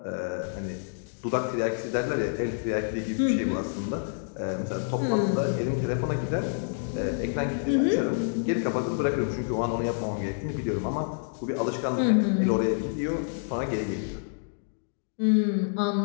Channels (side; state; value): right; silent; digital silence